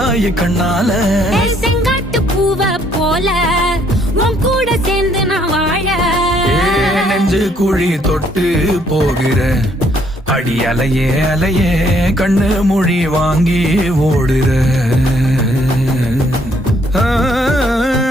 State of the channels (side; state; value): both; normal; correlation 0.67